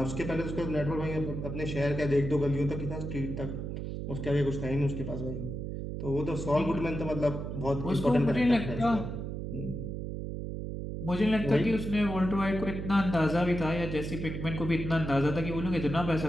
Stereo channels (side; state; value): right; noise; hum, 5 dB below the sound